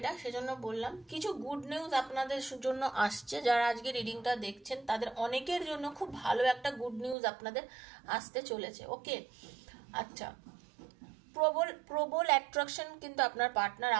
সেজন্য বললাম। কিছু গুড নিউজ আপনাদের জন্য আসছে, যারা আজকে রিডিংটা দেখছেন তাদের অনেকের জন্য খুব ভালো একটা গুড নিউজ আপনাদের আসতে চলেছে। ওকে, আচ্ছা, প্রবল অ্যাট্রাকশন কিন্তু আপনার পার্টনার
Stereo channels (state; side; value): drops out; left; at 7.2 s